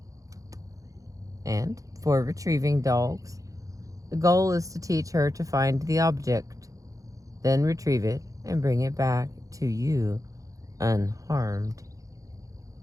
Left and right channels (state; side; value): late; left; 0.16 ms